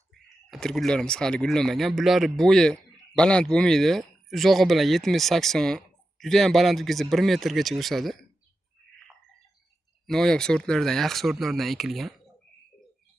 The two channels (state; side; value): normal; both; correlation 0.90